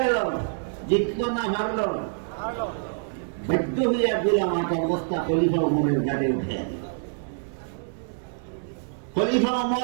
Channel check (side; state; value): left; silent; 61 dB below the other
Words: গেল, জিতল না হারল? বাধ্য হইয়া গোলাম আটার বস্তা খলিফা উমরের গাড়ি উঠে দিল। খলিফা